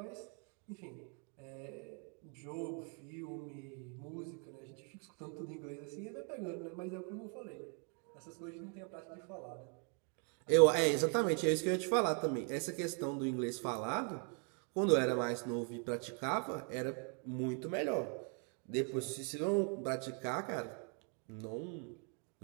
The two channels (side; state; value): left; quieter; 38.7 dB